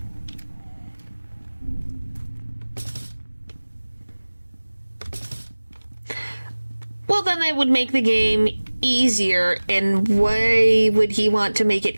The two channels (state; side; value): inverted; both; correlation -1.00